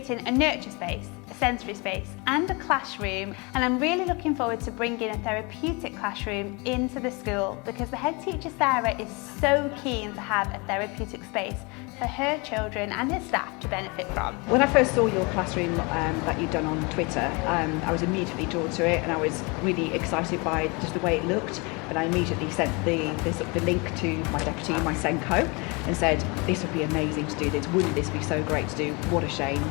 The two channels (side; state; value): right; quieter; 28.8 dB